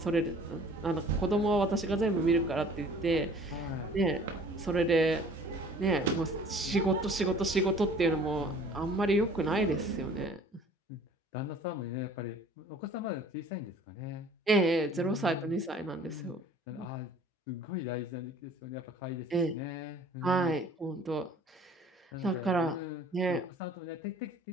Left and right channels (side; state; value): both; normal; correlation 0.51